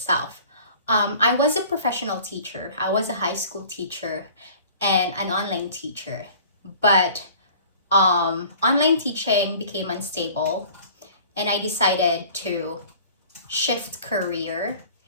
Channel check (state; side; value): inverted; both; correlation -0.47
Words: I was a professional teacher. I was a high school teacher and an online teacher. But online teaching became unstable and I decided to shift career